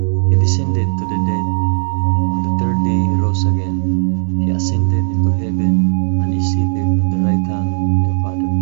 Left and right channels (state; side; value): silent; left; digital silence